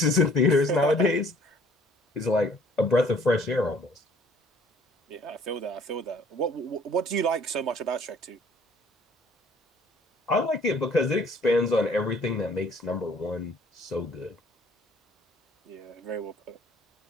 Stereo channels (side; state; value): both; normal; correlation 0.57